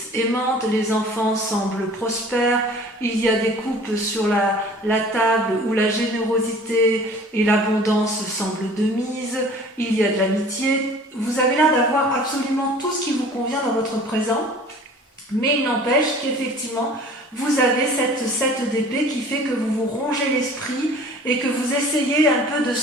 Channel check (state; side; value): normal; both; correlation 0.47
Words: aimante, les enfants semblent prospères, il y a des couples sur la table où la générosité et l'abondance semblent de mise, il y a de l'amitié. Vous avez l'air d'avoir absolument tout ce qui vous convient dans votre présent, mais il n'empêche qu'effectivement, vous avez cette 7 d'épée qui fait que vous vous rongez l'esprit et que vous essayez un peu de